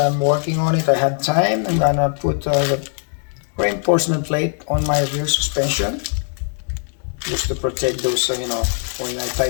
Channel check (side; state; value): right; silent; 60 dB below the other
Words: working on it, I have time. I'm gonna put the reinforcement plate on my rear suspension just to protect those, when I